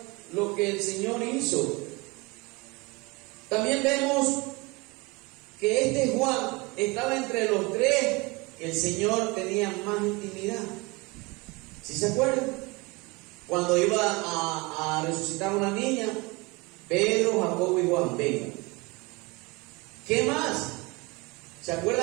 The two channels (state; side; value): quieter; left; 25.7 dB